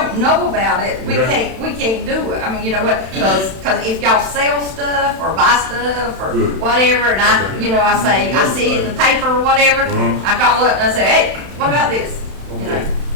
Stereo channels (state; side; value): late; left; 31 ms